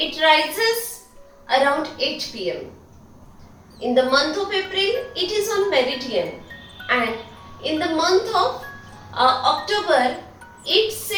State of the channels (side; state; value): both; identical; correlation 1.00